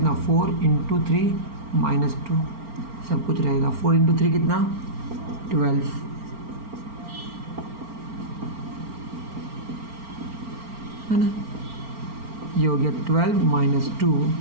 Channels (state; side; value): late; left; 4.4 ms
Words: 4 इंटू 3 माइनस 2, सब कुछ रहेगा। 4 इंटू 3 कितना, 12, है ना, ये हो गया 12 माइनस 2,